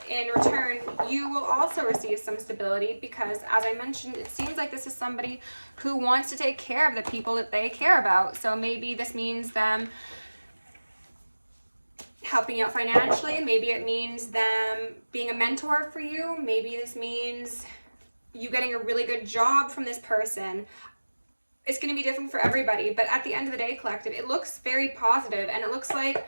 in return, you will also receive some stability because, as I mentioned, it seems like this is somebody who wants to take care of the people that they care about. So maybe this means them helping you out financially. Maybe it means them being a mentor for you. Maybe this means you getting a really good job from this person. It's going to be different for everybody, but at the end of the day, collective, it looks very positive, and it looks like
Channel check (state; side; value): inverted; both; correlation -1.00